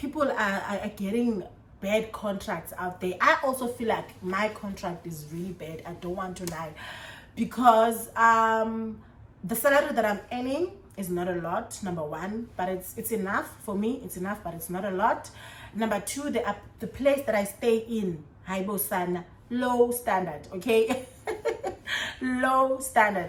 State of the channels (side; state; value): both; identical; correlation 1.00